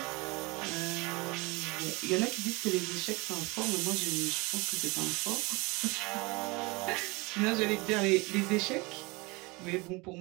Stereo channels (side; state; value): left; quieter; 25.6 dB